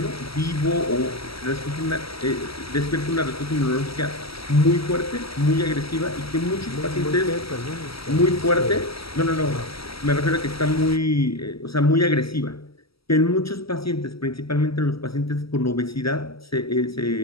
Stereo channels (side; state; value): right; late; 0.75 ms